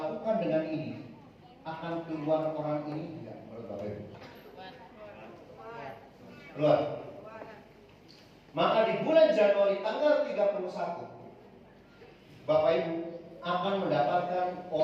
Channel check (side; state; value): both; identical; correlation 1.00